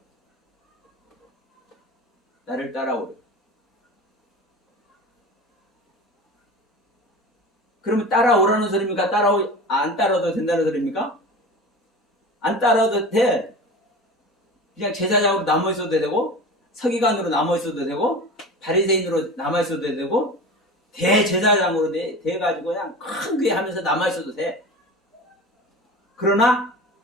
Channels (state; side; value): normal; both; correlation 0.33